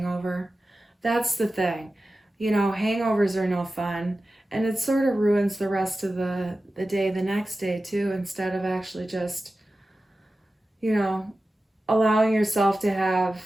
That's the thing. You know, hangovers are no fun. And it sort of ruins the rest of the day the next day too, instead of actually just, you know, allowing yourself to have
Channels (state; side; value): normal; both; correlation 0.94